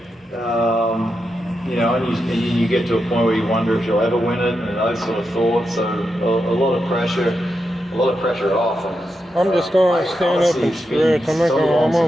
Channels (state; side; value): normal; both; correlation 0.86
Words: You know, and you get to a point where you wonder if you'll ever win it, and those sort of thoughts. So a lot of pressure off. And, I'm just gonna stand up and stretch. I'm